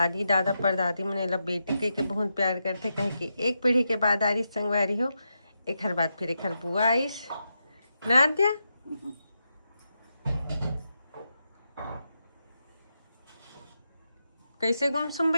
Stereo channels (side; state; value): both; inverted; correlation -0.86